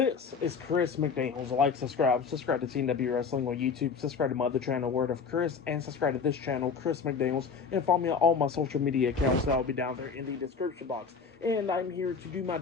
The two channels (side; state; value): right; quieter; 5.6 dB